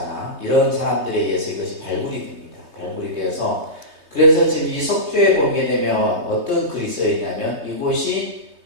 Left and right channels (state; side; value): late; left; 3.2 ms